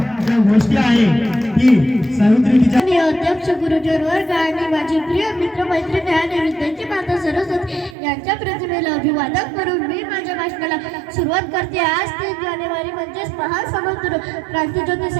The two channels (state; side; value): drops out; left; at 8.0 s